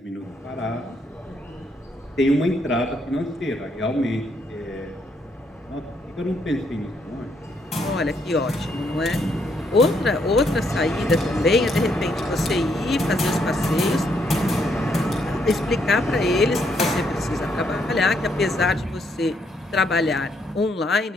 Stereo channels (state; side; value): normal; both; correlation 0.74